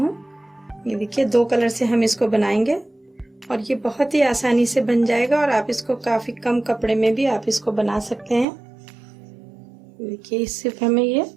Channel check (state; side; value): drops out; left; at 8.5 s